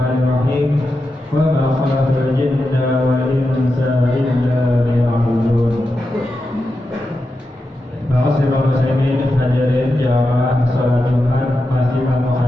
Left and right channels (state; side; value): normal; both; correlation 0.89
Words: Wa ma khalaqtul jinna wal insa illa liya'budun. Ma'asyiral muslimin hadirin jamaah salat Jumat, masjidil